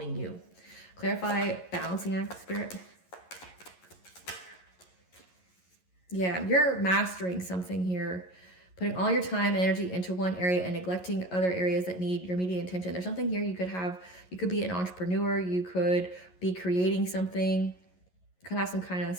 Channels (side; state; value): right; late; 11 ms